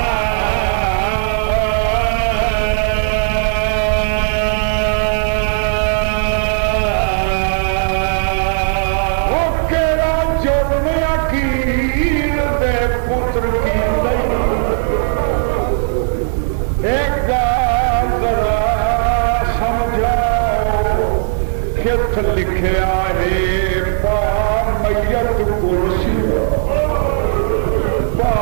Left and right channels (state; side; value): silent; left; digital silence